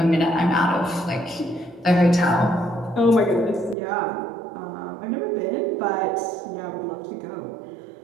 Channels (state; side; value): drops out; left; at 3.8 s